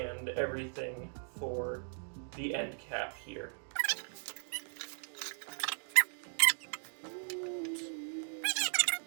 everything for the end cap here.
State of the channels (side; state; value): left; silent; digital silence